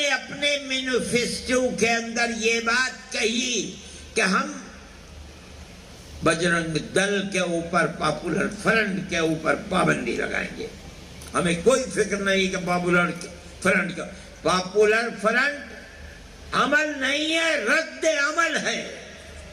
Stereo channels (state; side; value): identical; both; correlation 1.00